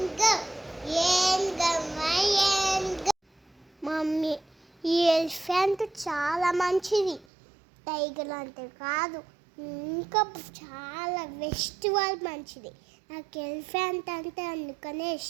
ఏంగ mummy ఈ elephant చాలా మంచిది. టైగర్ అంటే కాదు, ఇంకా చాలా ఫెస్టివల్ మంచిది. నాకు ఎలిఫెంట్ అంటే అందుకనే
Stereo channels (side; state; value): left; drops out; at 7.2 s